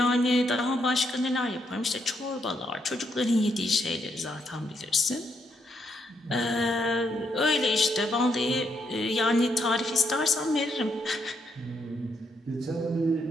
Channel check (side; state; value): both; normal; correlation 0.77